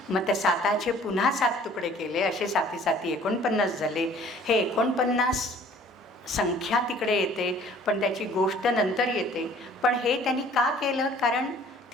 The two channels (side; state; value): both; normal; correlation 0.53